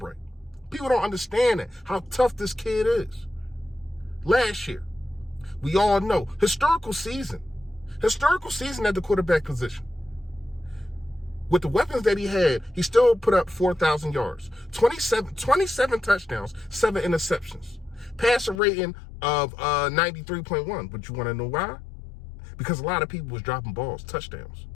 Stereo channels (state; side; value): drops out; right; at 18.6 s